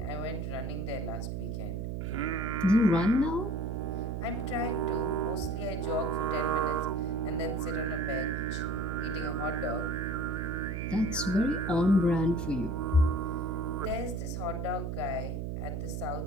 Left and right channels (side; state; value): right; noise; hum, 3 dB below the sound